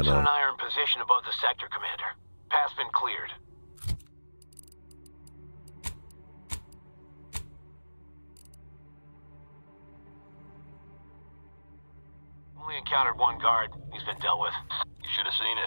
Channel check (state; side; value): inverted; both; correlation -1.00